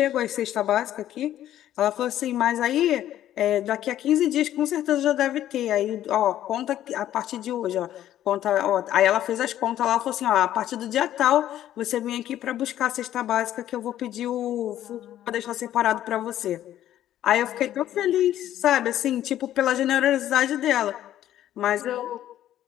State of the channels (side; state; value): right; quieter; 12.2 dB